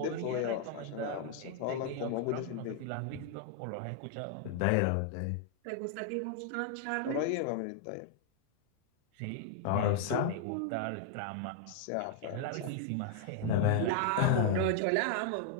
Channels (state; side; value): different; both; correlation 0.00